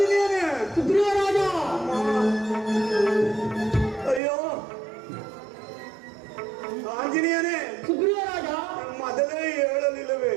ಸುಗ್ರೀವರಾಜ. ಅಯ್ಯೋ ಆಂಜನೇಯನೇ ಸುಗ್ರೀವರಾಜ, ಮೊದಲೇ ಹೇಳಲಿಲ್ಲವೇ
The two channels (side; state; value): left; drops out; at 4.2 s